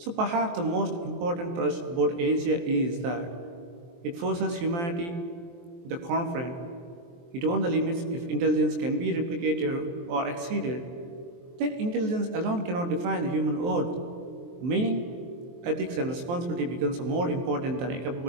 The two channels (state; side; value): late; left; 23 ms